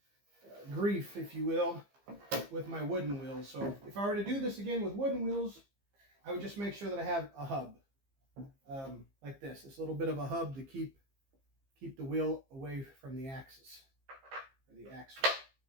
grief, if you will, with my wooden wheels. So if I were to do this again with wooden wheels, I would just make sure that I have a hub like this little bit of a hub to keep the wheel away from the axis, or the axle.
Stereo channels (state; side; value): late; left; 15 ms